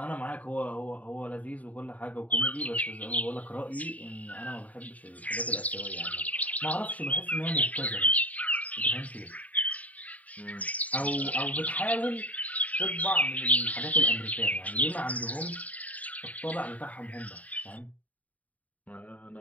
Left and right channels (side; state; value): right; late; 0.071 ms